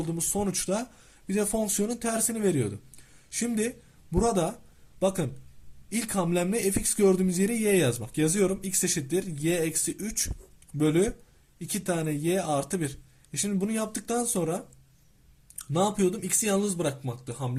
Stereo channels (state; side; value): identical; both; correlation 1.00